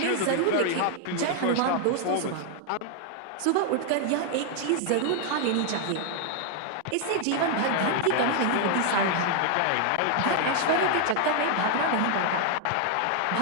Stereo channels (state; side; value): different; both; correlation 0.00